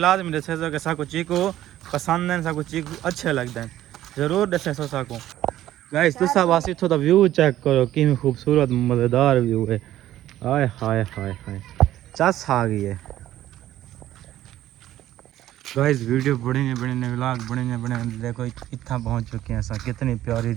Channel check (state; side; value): quieter; left; 13.4 dB